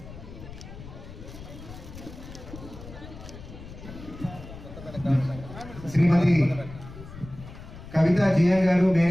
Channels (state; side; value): noise; left; rumble, 14 dB below the sound